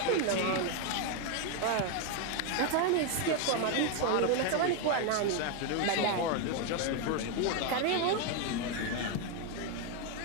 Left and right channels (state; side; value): different; both; correlation 0.01